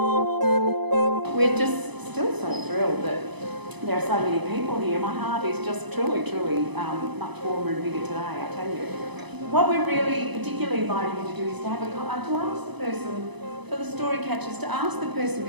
We're just still so thrilled that there are so many people here. My heart is just truly, truly much warmer and bigger today, I tell you. What we're really particularly inviting you to do is to have to ask the person, for the story catchers, to ask the person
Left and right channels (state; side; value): late; left; 0.99 ms